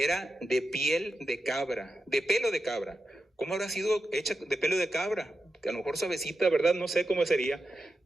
de piel de cabra, de pelo de cabra. ¿Cómo habrá sido hecha de pelo de cabra? Que a lo mejor suavecita, ¿verdad? No sé cómo sería.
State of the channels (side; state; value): both; normal; correlation 0.89